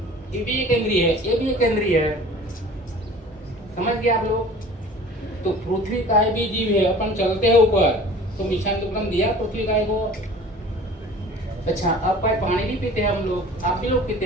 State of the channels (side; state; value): both; normal; correlation 0.44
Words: ये भी एक इंद्रिय है, ये भी एक इंद्रिय है, समझ गए आप लोग? तो पृथ्वी काय भी जीव है, अपन चलते हैं ऊपर, तो मिशान दुक्कड़म दिया पृथ्वी काय को। अच्छा, अब पानी भी पीते हैं हम लोग, आप भी लोग